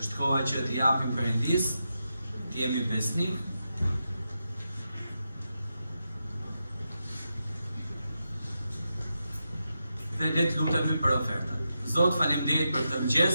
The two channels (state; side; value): inverted; both; correlation -0.87